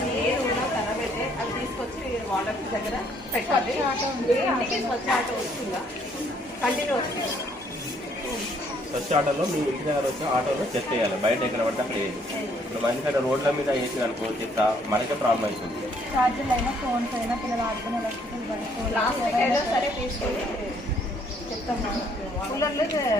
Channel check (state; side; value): normal; both; correlation 0.66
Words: ఏది ఉన్నా ఖరాబ్ అయితే అవి తీసుకొచ్చి వాటర్ దగ్గర పెట్టాలి. ఇంటికి స్వచ్ఛ ఆటో వస్తుందా? కంటిన్యూ వస్తుంది. స్వచ్ఛ ఆటోలో మీ ఇంటి దగ్గర వచ్చి ఆటోలో చెత్త వేయాలి, బయట ఎక్కడ పడితే అక్కడ వేయాలి. ఇప్పుడు మంచిగా రోడ్ల మీద వేసి అనుకో చెత్త మనకే ప్రాబ్లం అవుతుంది. చార్జర్లు అయినా ఫోన్స్ అయినా పిల్లలు ఆడుకునే ఎలక్ట్రికల్ ప్లాస్టిక్ అయినా సరే తీసుకొని చెప్తాము. కూలర్లు